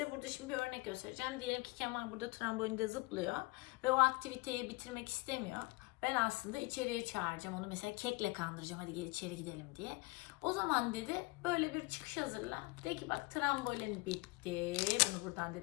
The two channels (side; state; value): right; quieter; 24.7 dB